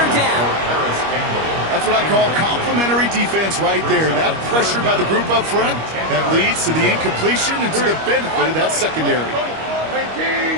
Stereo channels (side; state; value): left; late; 25 ms